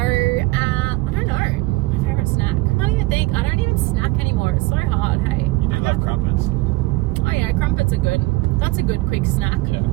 don't know. My favourite snack. I can't even think. I don't even snack anymore. It's so hard, hey. You do love crumpets. Oh yeah, crumpets are good. That's a good quick snack. Yeah,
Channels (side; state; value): left; quieter; 21.4 dB